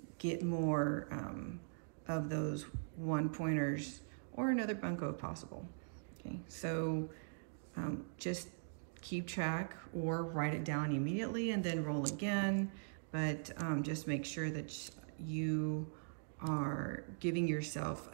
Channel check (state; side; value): silent; left; digital silence